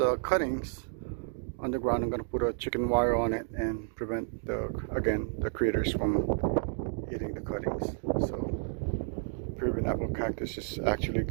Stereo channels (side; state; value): left; silent; digital silence